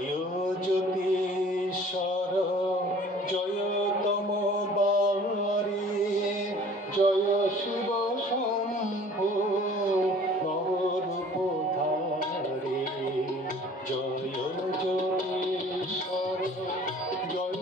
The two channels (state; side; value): normal; both; correlation 0.50